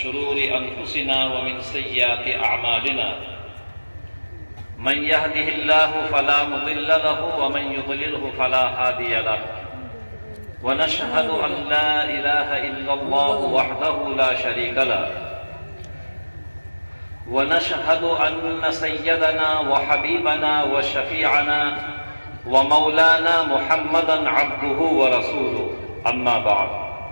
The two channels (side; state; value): both; inverted; correlation -1.00